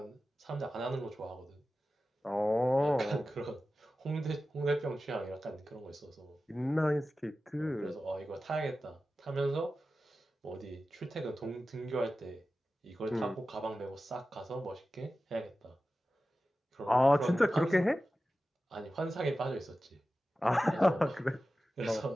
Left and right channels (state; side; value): normal; both; correlation 0.94